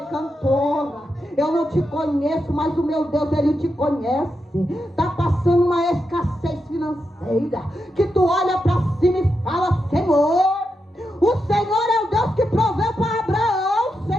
cantora, eu não te conheço, mas o meu Deus, Ele te conhece. Está passando uma escassez financeira, que tu olha para cima e fala, Senhor, o Senhor é o Deus que proveu para Abraão,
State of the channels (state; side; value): normal; both; correlation 0.86